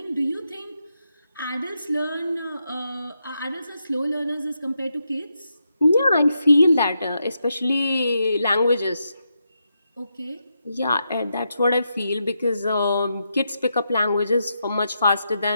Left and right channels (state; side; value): inverted; both; correlation -0.83